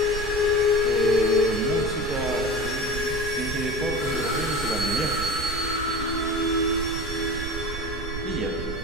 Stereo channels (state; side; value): noise; right; rumble, 7 dB below the sound